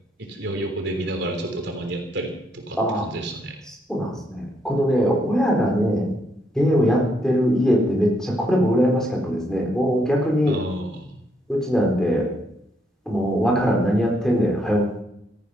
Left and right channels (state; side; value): normal; both; correlation 0.74